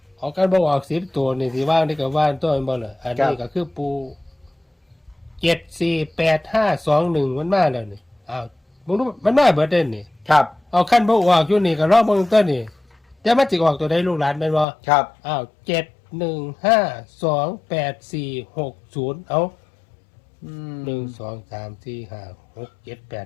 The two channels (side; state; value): right; drops out; at 14.7 s